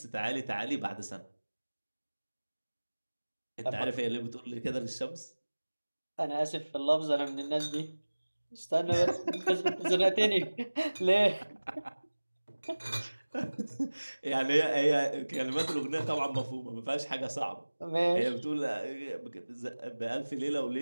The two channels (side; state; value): both; inverted; correlation -1.00